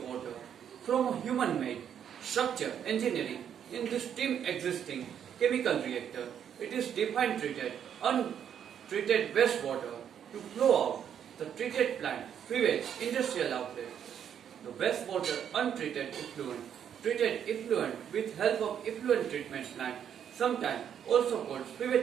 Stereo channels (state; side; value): quieter; left; 8.9 dB